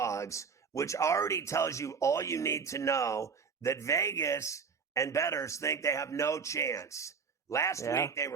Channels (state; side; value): quieter; left; 5.8 dB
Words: which already tells you all you need to know that Vegas and bettors think they have no chance. Last week they